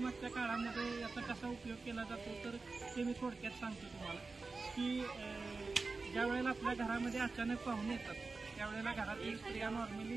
काळामध्ये याचा कसा उपयोग केला जातो तर ते मी थोडक्यात सांगतो तुम्हाला की ज्या वेळेला आपल्या घरामध्ये अचानक पाहुणे येतात त्यावेळेला घरातील स्त्रिया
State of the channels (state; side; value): quieter; left; 3.9 dB